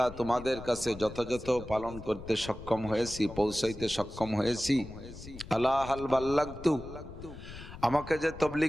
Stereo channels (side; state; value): left; noise; rumble, 14 dB below the sound